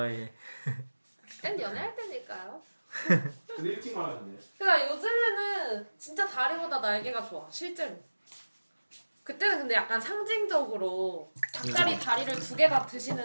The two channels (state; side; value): inverted; both; correlation -1.00